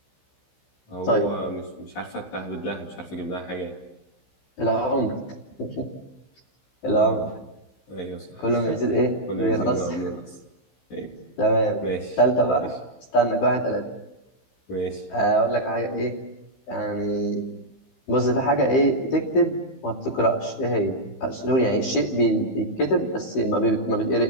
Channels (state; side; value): late; right; 15 ms